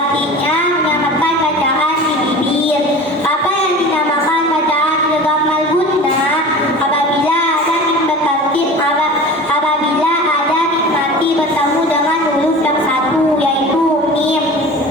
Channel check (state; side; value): normal; both; correlation 0.37